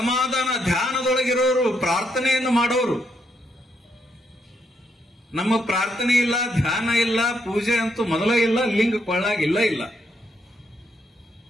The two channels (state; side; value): normal; both; correlation 0.77